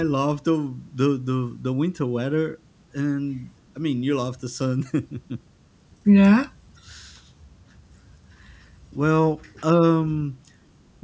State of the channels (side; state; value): both; identical; correlation 1.00